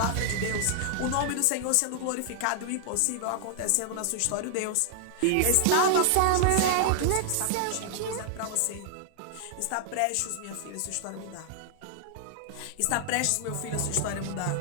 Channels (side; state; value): both; different; correlation -0.01